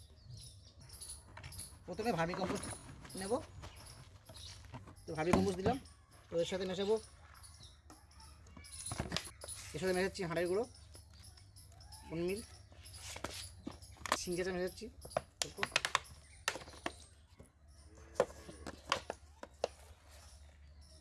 প্রথমে ভার্মি কম্পোস্ট নেব। তো ভার্মি কম্পোস্ট দিলাম, তো এর সাথে মেশাবো, এর সাথে মেশাচ্ছি হাঁড়ের গুঁড়ো, মিল সিঞ্জাটা মেশাচ্ছি,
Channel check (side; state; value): both; identical; correlation 1.00